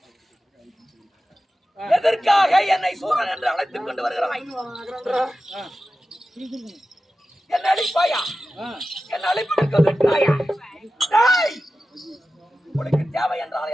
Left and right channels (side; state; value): both; normal; correlation 0.93